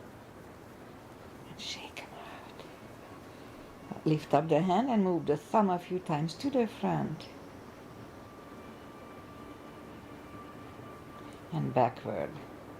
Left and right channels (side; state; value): both; identical; correlation 1.00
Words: And shake them out. Lift up the hand and move the thumb a few times to the front. And backward.